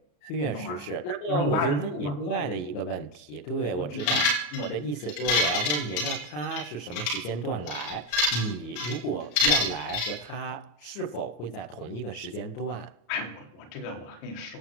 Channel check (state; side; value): late; right; 34 ms